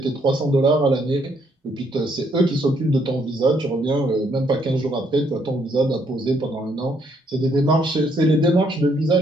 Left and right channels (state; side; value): normal; both; correlation 0.70